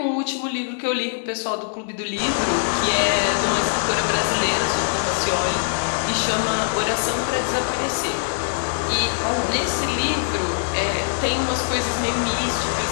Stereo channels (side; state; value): right; silent; 64 dB below the other